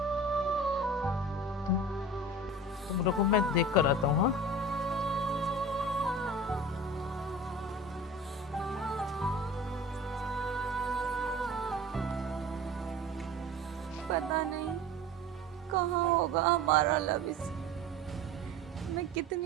तुम रुको, मैं देख कर आता हूँ। हाँ पता नहीं कहाँ होगा हमारा लबिस। मैं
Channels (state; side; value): normal; both; correlation 0.37